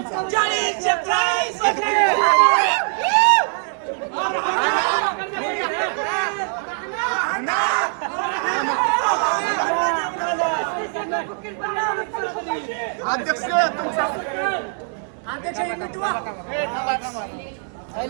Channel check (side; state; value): left; silent; 57 dB below the other